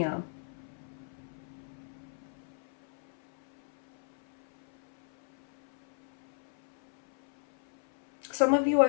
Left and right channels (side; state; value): right; silent; 56 dB below the other